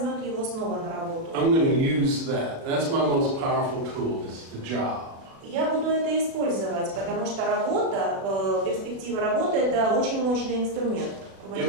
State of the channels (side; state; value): left; late; 36 ms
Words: его снова на работу. I'm going to use that. That's my most powerful tool, is the job. Я буду это использовать, потому что работа, перспектива работы – это очень мощный инструмент